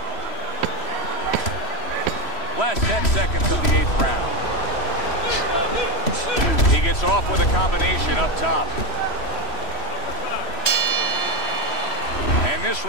Last 10 seconds of the 8th round. He gets off with a combination up top. And this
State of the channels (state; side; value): late; right; 3.0 ms